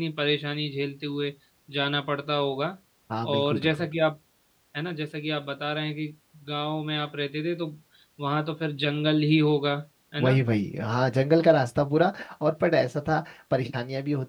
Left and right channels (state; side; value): identical; both; correlation 1.00